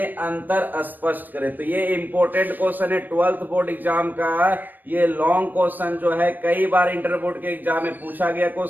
अंतर स्पष्ट करें। तो ये इंपॉर्टेंट क्वेश्चन है 12th बोर्ड एग्जाम का। ये लॉन्ग क्वेश्चन जो है कई बार इंटर बोर्ड के एग्जाम में पूछा गया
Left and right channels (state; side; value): late; left; 0.089 ms